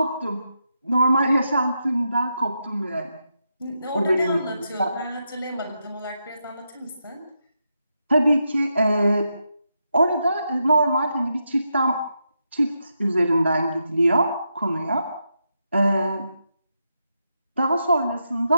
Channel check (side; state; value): both; inverted; correlation -0.84